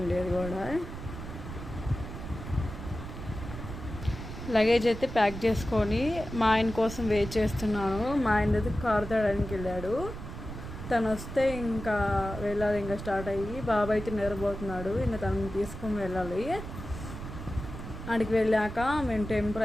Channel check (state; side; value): noise; right; rumble, 9 dB below the sound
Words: అది కూడా లగేజ్ అయితే ప్యాక్ చేసుకొని మా ఆయన కోసం వెయిట్ చేస్తున్నాను. మా ఆయన అయితే కారు తేడానికి వెళ్ళాడు. తను వస్తే ఇంకా వెళ్ళాలి. ఇంకా స్టార్ట్ అయ్యి బాబు అయితే నిద్రపోతున్నాడు. ఇంకా తనని తీసుకొని వెళ్ళాలి. అక్కడికి వెళ్ళాక మేము టెంపుల్